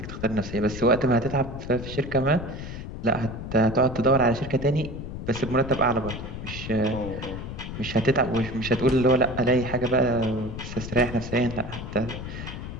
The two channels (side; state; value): left; noise; rumble, 8 dB below the sound